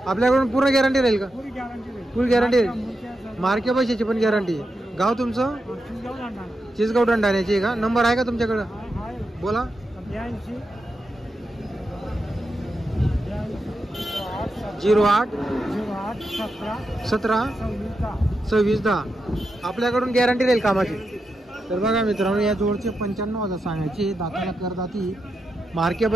आपल्याकडून पूर्ण गॅरंटी राहील का? फुल गॅरंटी राहील। मार्के पैशाची पण गॅरंटी। गाव तुमचं? चिसगाव दंडाण्याची आहे का? नंबर आहे का तुमच्याकडं? बोला। 08 17 26 10। आपल्याकडून गॅरंटी राहील कामाची। तर बघा मित्रांनो, या जोडचे 95,000 सांगायचे। दाताला करदाती, मार्के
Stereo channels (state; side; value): normal; both; correlation 0.87